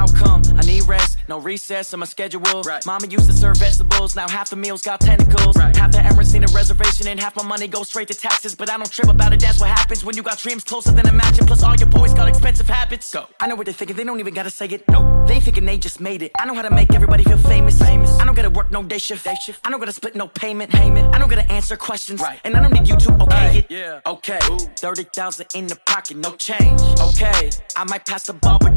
come? I need rest, no recess in my schedule. Right. Mama used to serve vegetables, now half the meals got tentacles. Right. Half the Emirates need a reservation and half my money goes straight to taxes. But I don't trip about it, that's what happens when you got dreams closer than a match. And plus all your boys got expensive habits. Go. I know what they're thinking, they don't even gotta say it. Nope. They thinking they just made it. I know how to make everybody feel famous. I don't gotta work no day shift. I don't gotta split no payment. I don't gotta answer questions. Right. And I don't need you to okay it. Yeah. Okay. 30,000 in the pocket, no change. Okay. I might pass the ball, but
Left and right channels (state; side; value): inverted; both; correlation -1.00